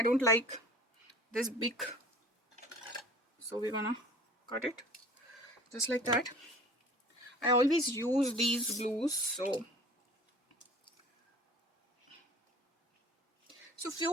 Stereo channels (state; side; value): normal; both; correlation 0.45